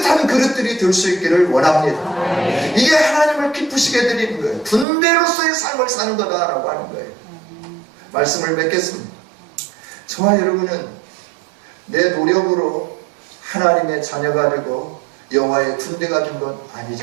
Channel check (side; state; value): left; drops out; at 4.9 s